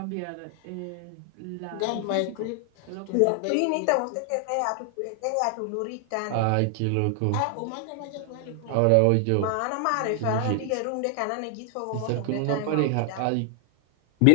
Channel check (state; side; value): different; both; correlation 0.00